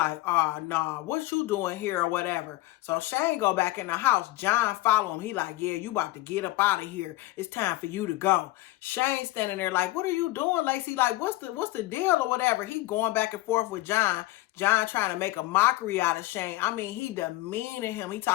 oh, nah, what you doing here or whatever. So Shane go back in the house. John follow him. He like, yeah, you about to get up out of here. It's time for you to go. Shane standing there like, what are you doing, Lacey? Like, what's the deal or whatever? He going back and forth with John. John trying to make a mockery out of Shane. I mean, he demeaning him. He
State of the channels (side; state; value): right; quieter; 18.4 dB